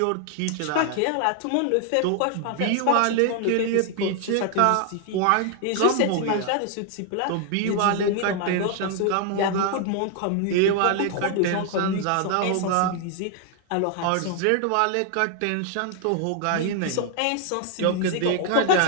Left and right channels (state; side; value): different; both; correlation 0.00